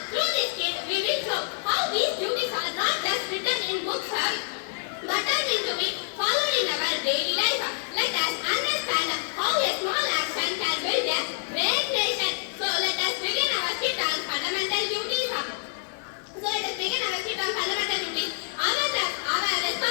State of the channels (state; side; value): silent; right; digital silence